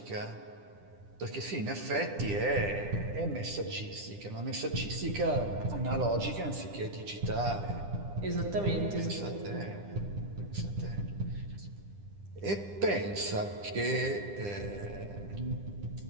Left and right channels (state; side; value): late; left; 10 ms